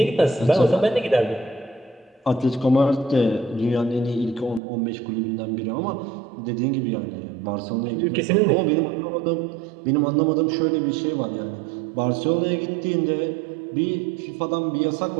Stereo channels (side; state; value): left; drops out; at 4.6 s